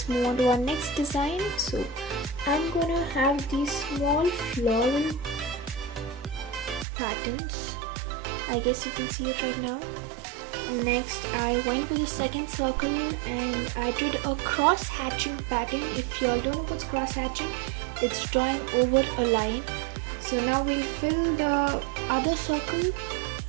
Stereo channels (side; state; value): left; drops out; at 6.9 s